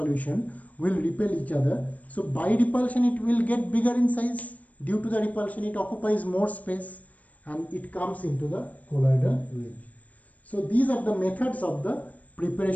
will repel each other, so by repulsion it will get bigger in size. Due to the repulsion it occupies more space and it comes into the colloidal range. So these are the methods of the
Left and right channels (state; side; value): late; right; 0.072 ms